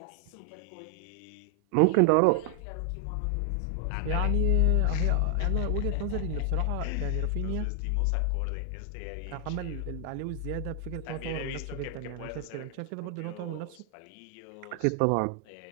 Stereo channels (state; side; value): different; both; correlation 0.00